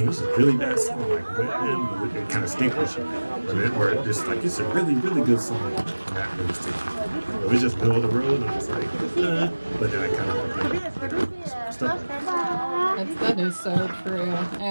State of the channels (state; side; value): inverted; both; correlation -1.00